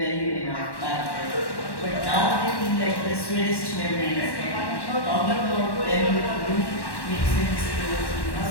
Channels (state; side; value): late; right; 1.1 ms